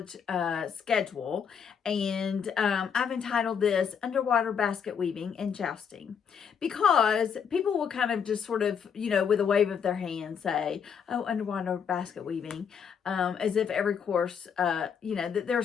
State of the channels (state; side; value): quieter; right; 7.1 dB